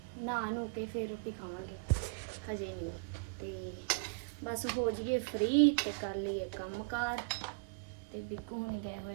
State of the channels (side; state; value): left; quieter; 32.1 dB